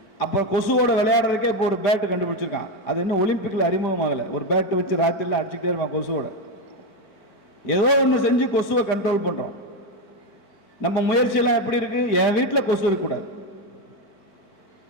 அப்போ கொசுவோட விளையாடுறதுக்கே இப்போ ஒரு பேட்டு கண்டுபிடிச்சிருக்கான். அது இன்னும் ஒலிம்பிக்ல அறிமுகம் ஆகலை. ஒரு பேட்டு வச்சு ராத்திரில அடிச்சுக்கிட்டே இருப்பான் கொசுவோட. ஏதோ ஒன்று செஞ்சு கொசுவை கண்ட்ரோல் பண்றோம். நம்ம முயற்சியெல்லாம் எப்படி இருக்கு? என் வீட்டில் கொசு இருக்கக்கூடாது,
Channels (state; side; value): late; right; 4.5 ms